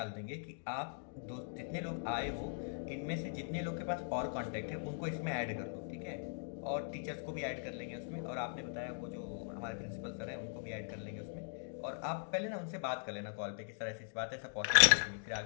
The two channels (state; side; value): silent; right; digital silence